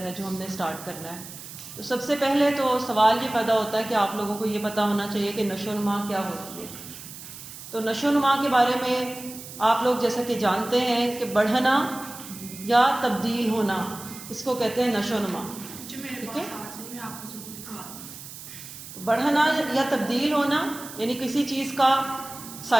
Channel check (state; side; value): noise; right; hiss, 13 dB below the sound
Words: جو ہم نے سٹارٹ کرنا ہے۔ تو سب سے پہلے تو سوال یہ پیدا ہوتا ہے کہ آپ لوگوں کو یہ پتہ ہونا چاہیے کہ نشو و نما کیا ہوتی ہے۔ تو نشو و نما کے بارے میں آپ لوگ جیسا کہ جانتے ہیں کہ بڑھنا یا تبدیل ہونا، اس کو کہتے ہیں نشو و نما، ٹھیک ہے؟ بڑھنا یا تبدیل ہونا یعنی کسی چیز کا